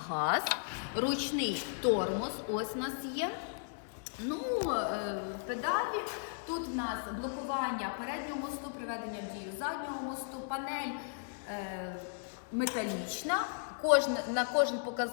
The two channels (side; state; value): right; silent; 54 dB below the other